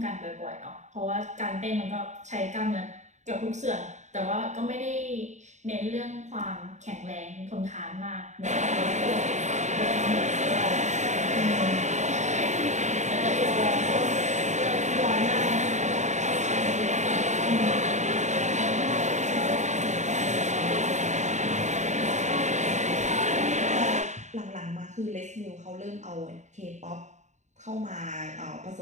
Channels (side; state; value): left; late; 0.34 ms